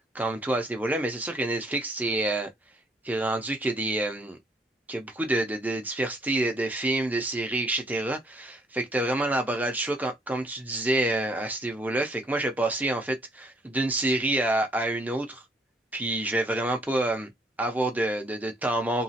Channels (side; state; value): both; normal; correlation 0.65